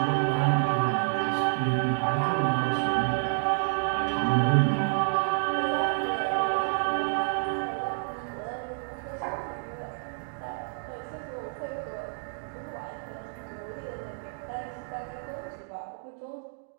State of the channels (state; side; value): silent; left; digital silence